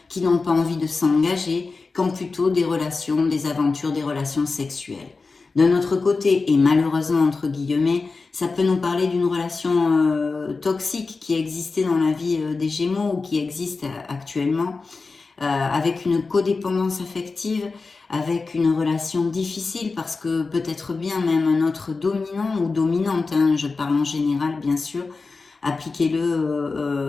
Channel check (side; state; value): right; quieter; 4.1 dB